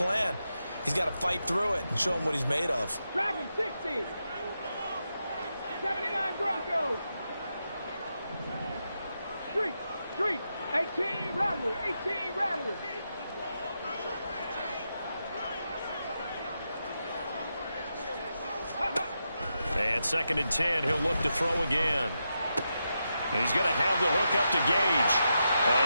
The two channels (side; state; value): both; inverted; correlation -0.86